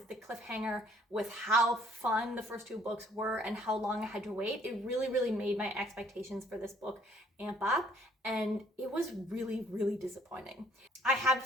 the cliffhanger, with how fun the first two books were and how long I had to wait, it really, really made my expectations for this book amp up, and it was really, really disappointing. I have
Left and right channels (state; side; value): normal; both; correlation 0.62